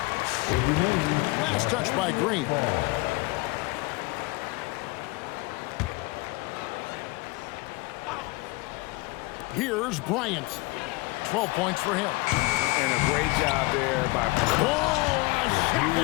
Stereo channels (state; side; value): quieter; right; 24.3 dB